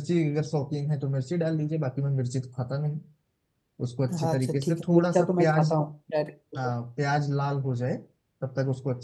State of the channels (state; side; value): identical; both; correlation 1.00